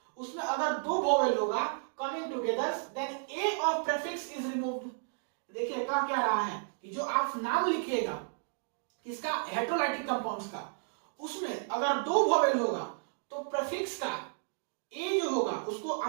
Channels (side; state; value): left; silent; digital silence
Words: उसमें अगर 2 वोवेल होगा coming together, then a of prefix is removed. देखिए क्या रहा है कि जो आप नाम लिखिएगा किसका, हेटेरोलाइटिक कंपाउंड्स का, उसमें अगर 2 वोवेल होगा तो प्रीफिक्स का ए जो होगा उसको